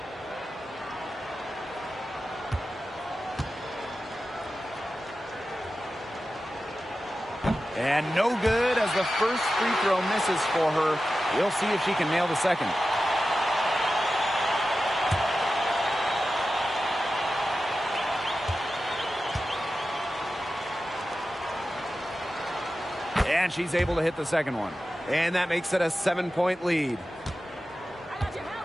And no good as the first free throw misses for her. We'll see if she can nail the second. And she's able to hit the second one. And that makes it a 7-point lead.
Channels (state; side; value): normal; both; correlation 0.93